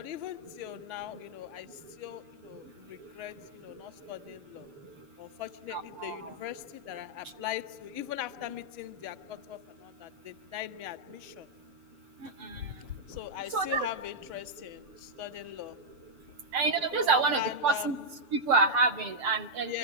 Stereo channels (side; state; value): left; late; 6.9 ms